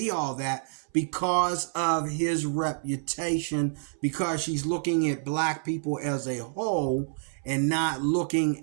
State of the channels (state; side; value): silent; left; 59 dB below the other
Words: all that because of his reputation, because she's looking at black people as a whole and not